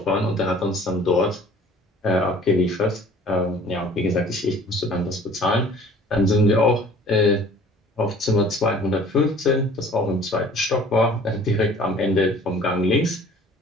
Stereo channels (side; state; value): both; normal; correlation 0.50